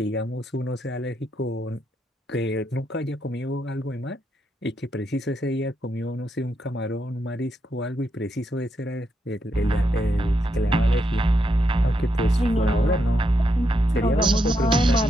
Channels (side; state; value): both; normal; correlation 0.81